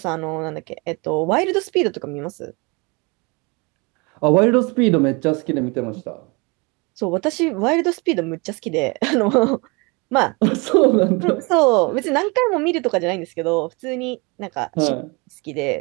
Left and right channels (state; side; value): quieter; left; 28.4 dB